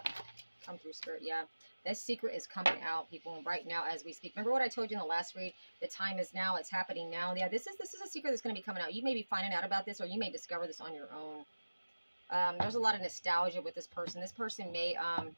Come through, Spirit. Yeah. This secret is coming out, people, right now as we speak. Remember what I told you in the last read? The time is now. It's happening now. Yeah, this is a secret that's going to be coming out. You may be finding out about this, or you may discover this on your own. There's a lot of nostalgia with this person. This person may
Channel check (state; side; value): inverted; both; correlation -1.00